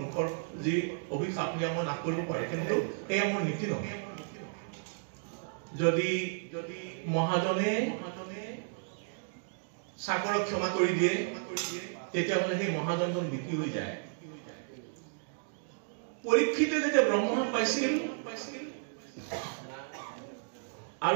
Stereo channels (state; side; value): silent; left; digital silence